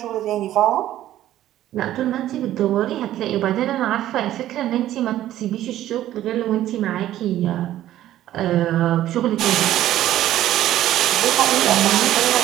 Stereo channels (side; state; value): left; quieter; 13.2 dB